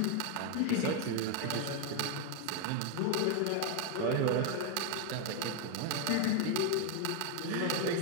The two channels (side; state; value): both; different; correlation 0.00